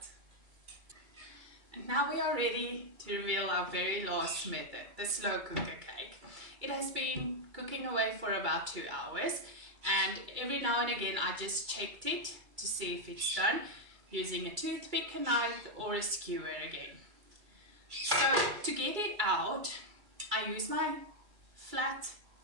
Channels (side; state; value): left; late; 2.3 ms